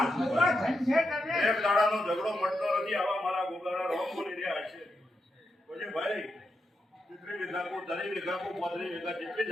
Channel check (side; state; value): both; normal; correlation 0.85